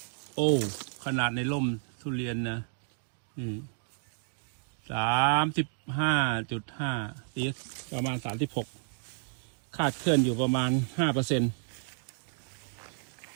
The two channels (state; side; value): silent; left; 57 dB below the other